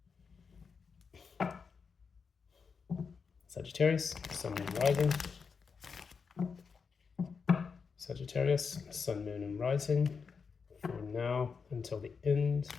Sagittarius, Sun, Moon, Rising. Sagittarius, Sun, Moon, and Rising from now until the end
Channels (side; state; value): right; quieter; 5.6 dB